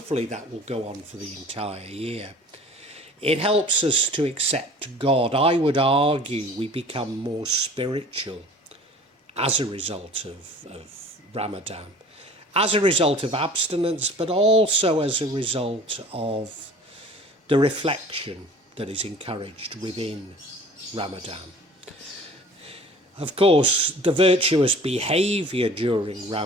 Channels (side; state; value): both; normal; correlation 0.46